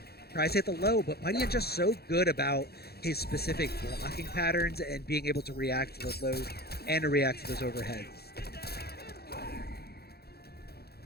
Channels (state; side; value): late; right; 0.46 ms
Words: Tries to hit the low, but MightyUnjust so good about his specific blocking patterns and being able to react to those lows and to react to those overheads.